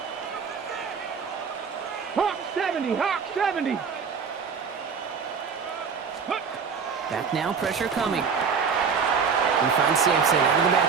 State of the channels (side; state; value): left; quieter; 6.0 dB